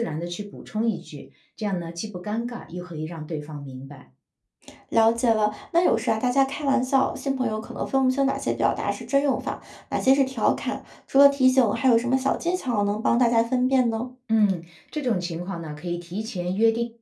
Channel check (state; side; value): identical; both; correlation 1.00